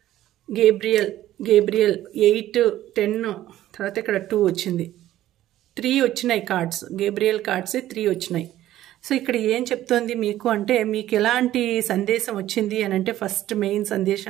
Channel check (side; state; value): left; quieter; 13.7 dB